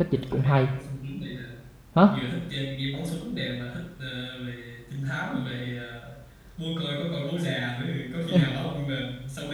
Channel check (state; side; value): identical; both; correlation 1.00